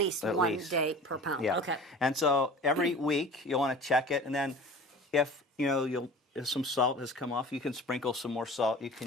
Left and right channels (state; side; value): normal; both; correlation 0.40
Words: day per pound. Yeah. Okay. And so every week you'll want to check it, and then if if some salt has come off, you can sprinkle some more salt. You